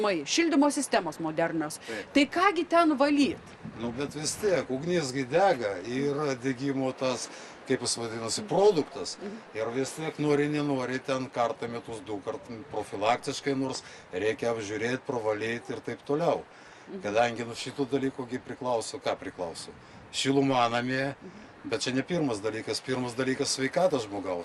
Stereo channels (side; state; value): both; identical; correlation 1.00